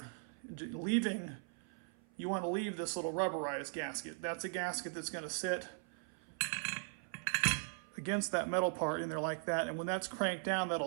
You want to leave this little rubberized gasket. That's a gasket that's going to sit against that metal part in there like that, and when that's cranked down,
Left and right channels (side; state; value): left; silent; 52 dB below the other